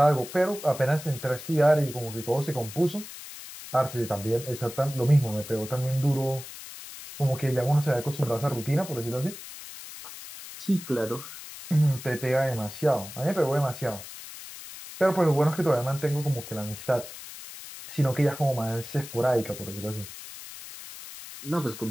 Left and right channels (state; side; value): noise; left; hiss, 13 dB below the sound